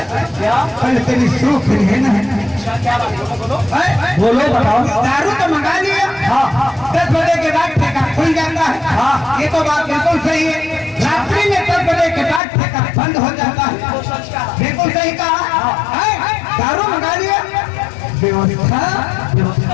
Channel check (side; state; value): right; drops out; at 12.4 s